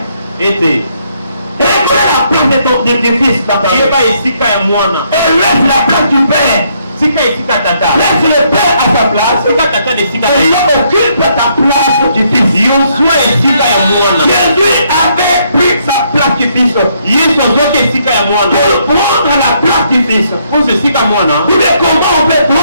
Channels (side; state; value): both; inverted; correlation -0.72